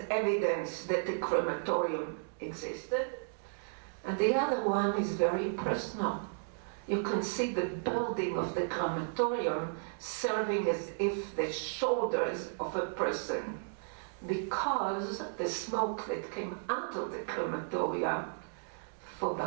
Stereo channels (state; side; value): silent; left; digital silence